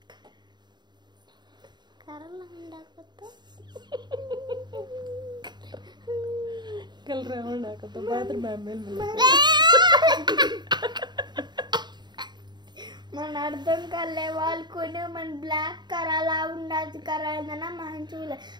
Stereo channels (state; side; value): late; left; 0.21 ms